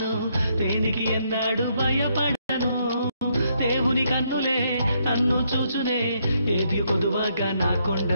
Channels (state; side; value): inverted; both; correlation -0.74